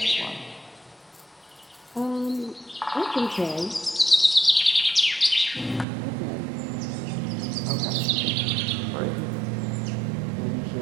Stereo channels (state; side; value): drops out; left; at 5.9 s